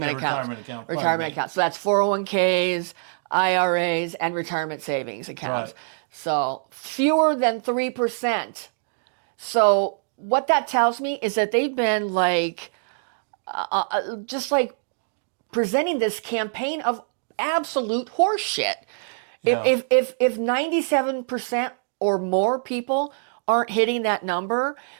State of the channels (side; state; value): left; silent; digital silence